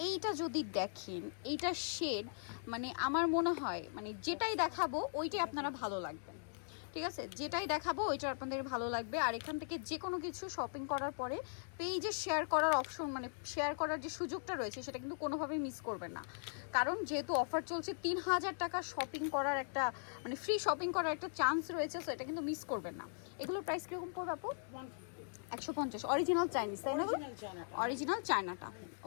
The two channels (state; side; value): silent; right; digital silence